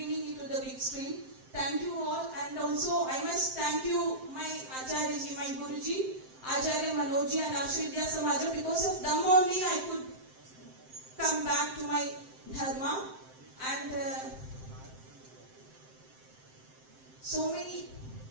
it to the big screen. Thank you all, and also I must thank you, my Acharya ji, my Guruji, Acharya Manojji and Ashridya Samaja. Because of them only I could come back to my dharma, and so many,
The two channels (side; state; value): left; late; 7.7 ms